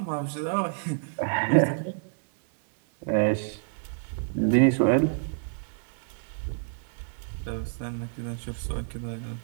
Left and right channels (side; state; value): left; silent; digital silence